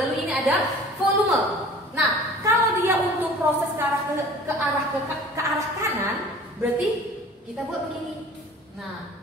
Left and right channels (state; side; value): normal; both; correlation 0.45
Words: ini ada volume. Nah, kalau dia untuk proses ke arah kanan, berarti kita buat begini.